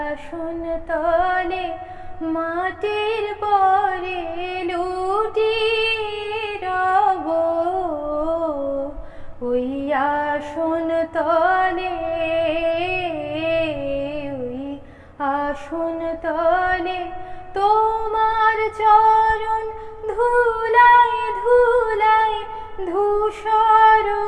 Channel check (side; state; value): both; identical; correlation 1.00